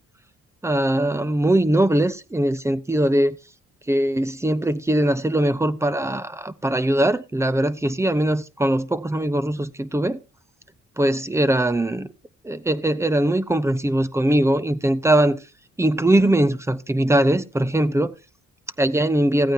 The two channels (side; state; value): both; normal; correlation 0.86